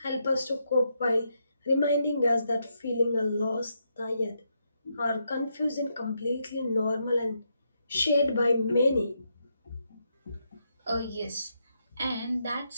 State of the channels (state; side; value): inverted; both; correlation -0.80